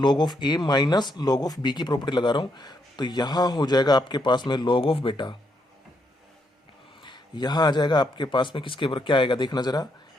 of a minus log of b की प्रॉपर्टी लगा रहा हूँ, तो यहाँ हो जाएगा आपके पास में log ऑफ बेटा, यहाँ आ जाएगा आपके पास में किसके ऊपर क्या आएगा देखना जरा,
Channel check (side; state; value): both; normal; correlation 0.77